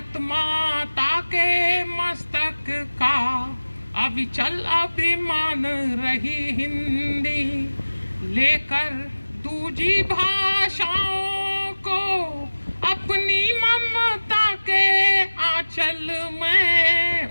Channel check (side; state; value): both; inverted; correlation -1.00